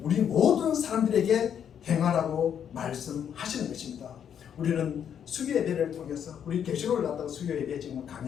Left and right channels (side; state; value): right; quieter; 8.6 dB